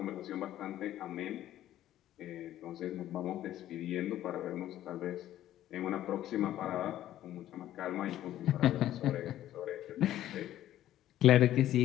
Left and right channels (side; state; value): right; quieter; 12.9 dB